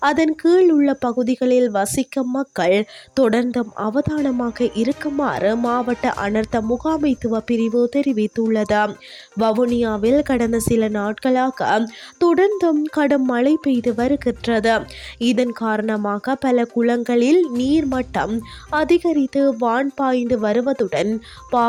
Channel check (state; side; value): identical; both; correlation 1.00